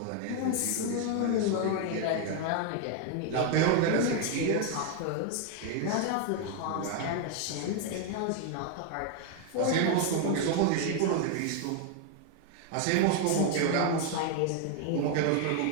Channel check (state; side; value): different; both; correlation 0.01